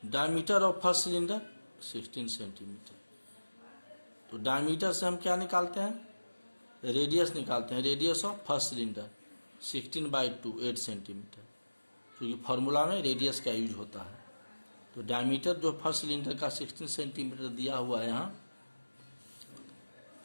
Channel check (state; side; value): inverted; both; correlation -1.00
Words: Diameter of first cylinder 16 centimetre. तो डायमीटर से हम क्या निकालते हैं? रेडियस निकालते हैं। Radius of first cylinder 16/2 8 centimetre, क्योंकि फॉर्मूला में रेडियस का यूज होता है। तो डायमीटर जो फर्स्ट सिलेंडर का 16 सेंटीमीटर दिया हुआ है यहाँ,